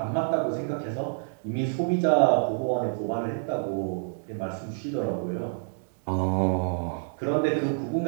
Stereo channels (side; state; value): left; silent; digital silence